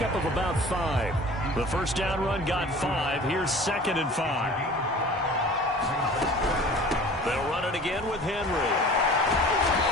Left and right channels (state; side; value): normal; both; correlation 0.44